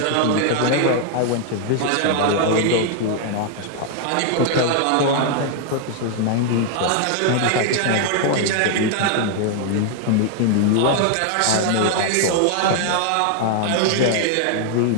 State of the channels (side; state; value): both; different; correlation 0.00